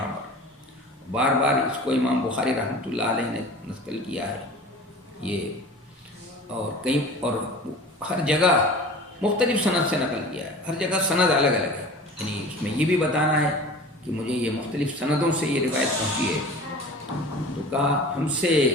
پر، بار بار اس کو امام بخاری رحمۃ اللہ علیہ نے نقل کیا ہے یہ، اور کئی اور ہر جگہ مختلف سند سے نقل کیا ہے، ہر جگہ سند الگ الگ ہے، یعنی اس میں یہ بھی بتانا ہے کہ مجھے یہ مختلف سندوں سے یہ روایت پہنچی ہے۔ تو کہا ہم سے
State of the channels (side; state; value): both; normal; correlation 0.39